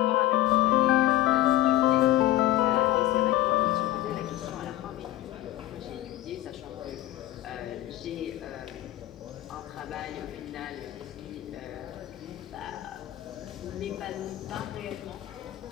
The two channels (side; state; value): right; quieter; 15.0 dB